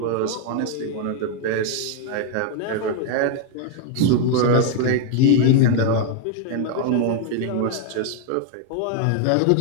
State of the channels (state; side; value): different; both; correlation 0.00